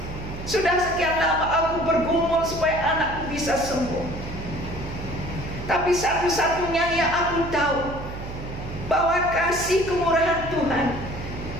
Sudah sekian lama aku bergumul supaya anakku bisa sembuh. Tapi satu-satunya yang aku tahu, bahwa kasih kemurahan Tuhan,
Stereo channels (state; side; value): noise; right; hum, 9 dB below the sound